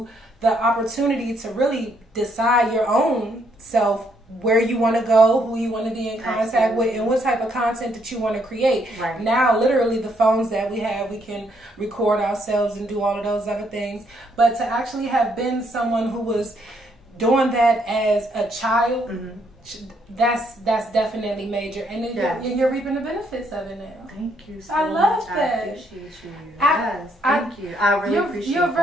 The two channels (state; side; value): normal; both; correlation 0.71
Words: the opportunity to really decide your own self, where you want to go, who you want to be in contact with, and what type of content that you want to create. Right. Now, literally, the phones that we have, we can record ourselves and do all of those other things. But to actually have been someone who was doing that as a child, that's definitely major. And then you're reaping the benefits of it now. Thank you so I love much. that. I appreciate you. Thank you. I really appreciate it. You're